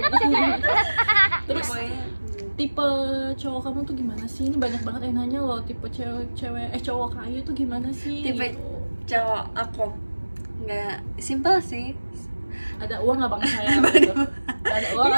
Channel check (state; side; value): inverted; both; correlation -1.00